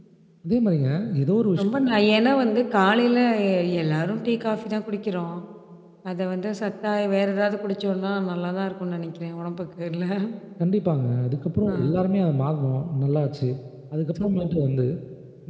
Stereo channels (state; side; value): identical; both; correlation 1.00